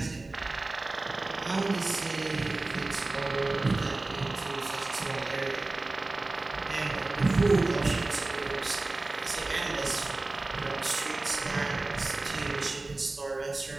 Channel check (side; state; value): left; quieter; 3.1 dB